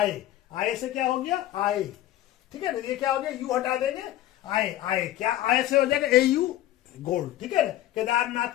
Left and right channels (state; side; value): quieter; right; 14.0 dB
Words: से क्या हो गया? आए। ठीक है ना, ये क्या हो गया? यू हटा देंगे, आए क्या आए से हो जाएगा? AU gold. ठीक है ना,